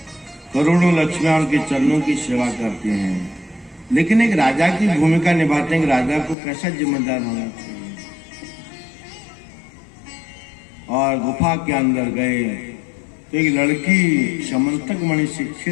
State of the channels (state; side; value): drops out; right; at 6.4 s